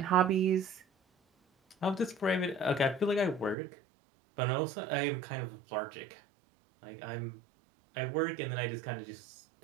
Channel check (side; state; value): left; drops out; at 3.6 s